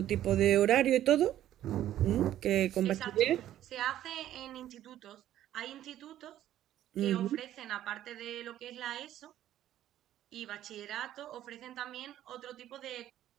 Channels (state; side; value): quieter; left; 12.4 dB